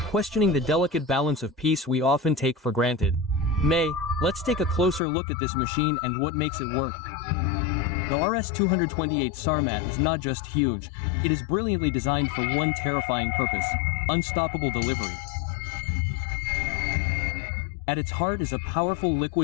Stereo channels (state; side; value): drops out; right; at 5.0 s